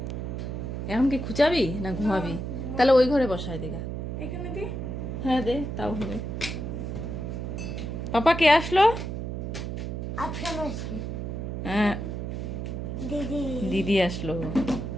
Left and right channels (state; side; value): noise; right; hum, 4 dB below the sound